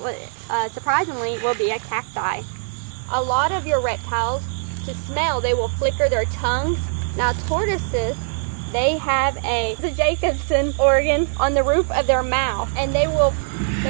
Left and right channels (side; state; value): left; silent; digital silence